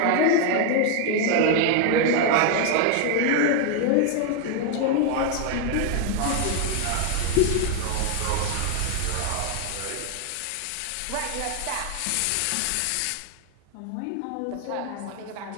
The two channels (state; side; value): different; both; correlation 0.00